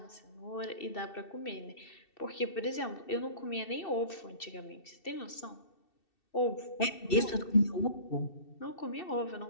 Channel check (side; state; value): right; late; 2.7 ms